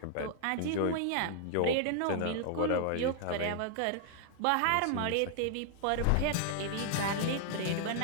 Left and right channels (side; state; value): both; different; correlation 0.00